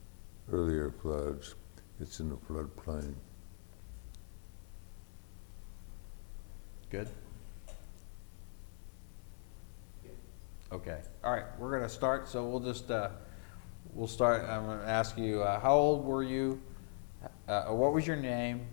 earlier floods. It's in the floodplain. Good? Okay. All right, we're going to start. So we'll just, we'll start. I'm going to ask you, how old were you? What was your name?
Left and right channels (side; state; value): right; silent; 51 dB below the other